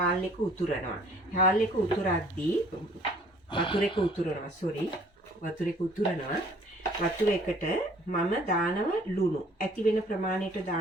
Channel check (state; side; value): normal; both; correlation 0.56